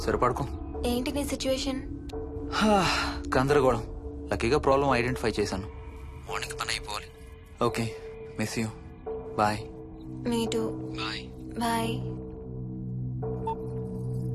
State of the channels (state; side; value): identical; both; correlation 1.00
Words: సరే పడుకో. ఏంటి నీ సిచ్యువేషన్? గందరగోళం. లక్కీగా ప్రాబ్లం ఐడెంటిఫై చేశాను. మార్నింగ్ పని అయిపోవాలి. Okay, miss you. Bye. Me too. Bye. Bye.